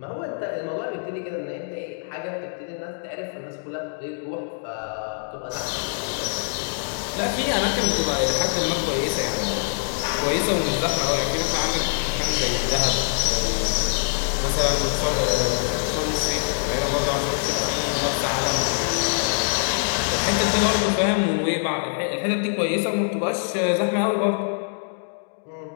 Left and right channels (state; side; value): silent; right; digital silence